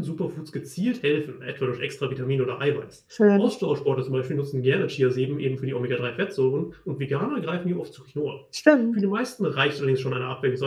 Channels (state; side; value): identical; both; correlation 1.00